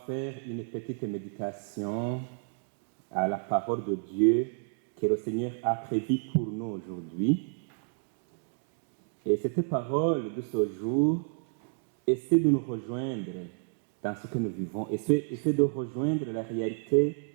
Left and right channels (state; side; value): silent; left; digital silence